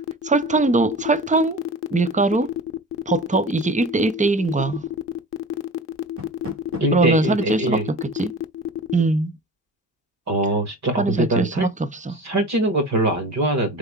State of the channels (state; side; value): normal; both; correlation 0.36